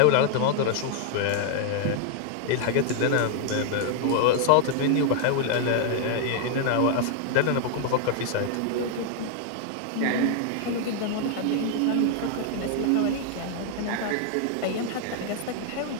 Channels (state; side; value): different; both; correlation 0.00